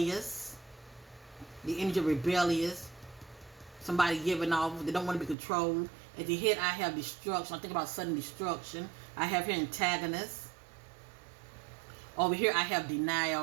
The energy of rebellious. Somebody giving off. They don't want to be controlled. At the head, I have destruction. I think about sudden destruction. I have here antagonist. Over here, I have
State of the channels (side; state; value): left; drops out; at 5.4 s